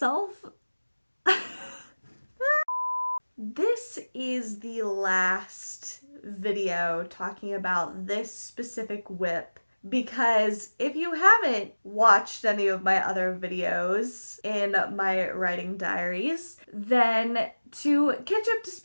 This is the last video talking about this specific WIP because if you haven't watched any of my other videos in my writing diaries, then to catch up to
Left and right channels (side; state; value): both; inverted; correlation -1.00